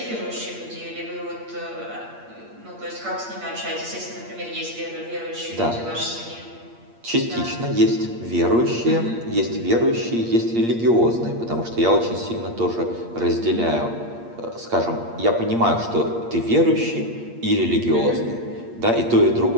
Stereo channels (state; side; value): late; left; 8.6 ms